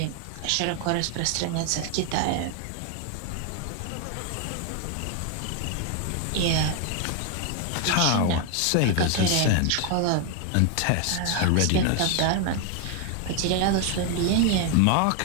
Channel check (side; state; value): both; different; correlation 0.01